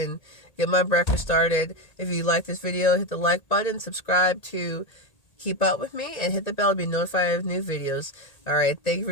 get my breakfast started. If you like this video, hit the like button, subscribe to keep up with me, and hit the bell to be notified of new videos. Alright, thank you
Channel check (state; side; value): late; right; 1.8 ms